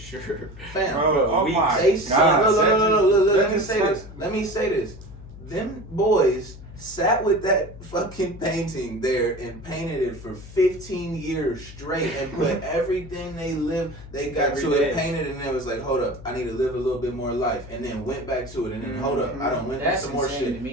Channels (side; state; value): left; noise; hum, 16 dB below the sound